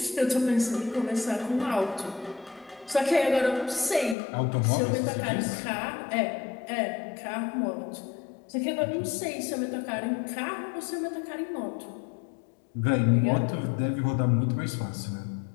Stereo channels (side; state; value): right; drops out; at 4.2 s